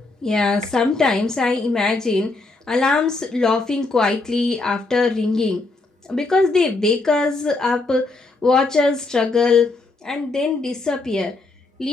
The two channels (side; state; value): right; quieter; 3.4 dB